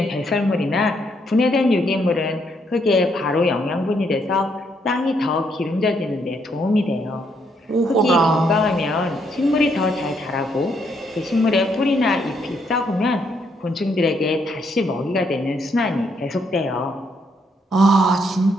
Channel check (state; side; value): normal; both; correlation 0.73